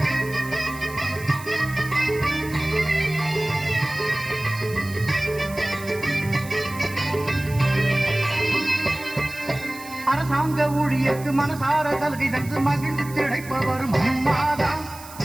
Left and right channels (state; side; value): noise; right; hiss, 17 dB below the sound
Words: அரசாங்க ஊழியருக்கு மனசார சலுகை தந்து மகிழ்ந்து திளைப்பவரும் அம்மாதான்